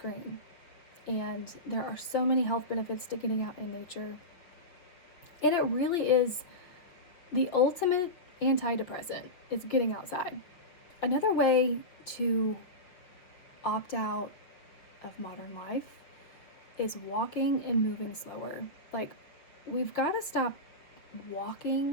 And there are so many health benefits to getting out in nature. And it really is the ultimate antidepressant, is getting outside. Another way to opt out of modern life is walking and moving slower. Like, we've got to stop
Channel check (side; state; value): right; late; 5.6 ms